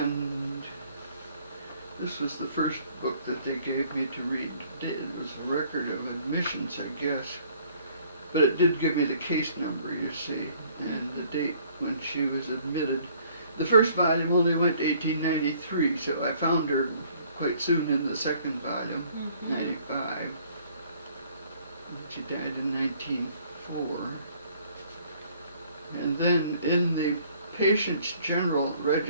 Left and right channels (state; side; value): inverted; both; correlation -0.59